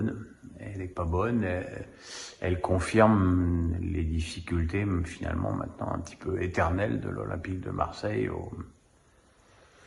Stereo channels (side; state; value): both; identical; correlation 1.00